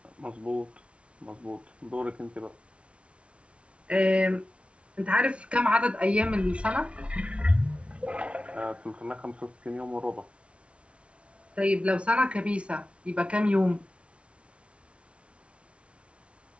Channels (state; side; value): late; left; 0.060 ms